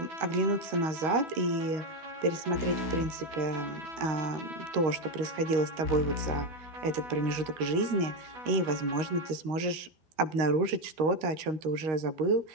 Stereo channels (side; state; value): left; late; 13 ms